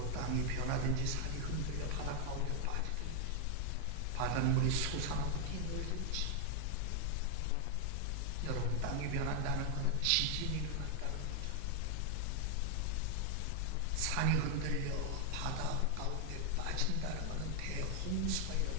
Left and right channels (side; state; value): both; different; correlation 0.00